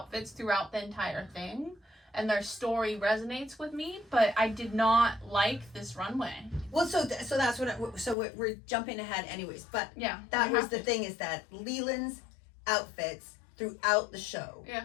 throughout the entire thing. And their story resonates with me, but I did not like this runway. Well, so that's what we're jumping ahead, anyways. But yeah, that was the thing, is that Leland's outfits throughout the show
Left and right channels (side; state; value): right; drops out; at 8.2 s